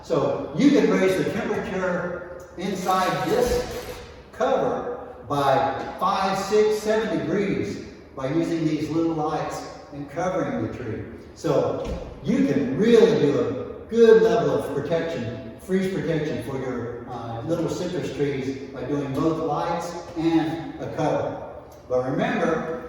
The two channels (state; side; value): identical; both; correlation 1.00